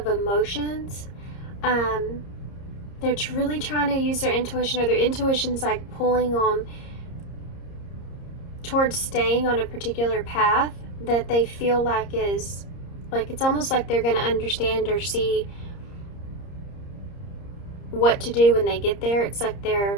emotions. They're really trying to use their intuition, or their intuition's like pulling them towards staying on a particular path that they feel like is, like, it's almost like they're going to understand or see what to do when they get there. It's like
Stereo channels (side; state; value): right; late; 30 ms